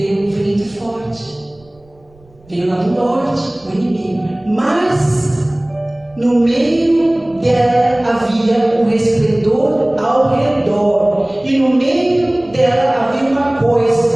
um vento forte. Veio lá do norte, o inimigo. Mas no meio dela havia um resplendor ao redor. E no meio dela havia uma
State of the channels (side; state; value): right; noise; rumble, 30 dB below the sound